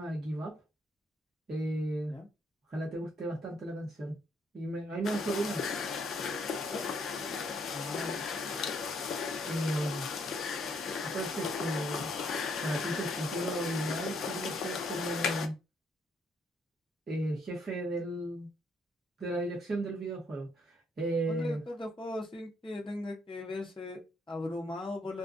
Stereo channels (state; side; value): normal; both; correlation 0.70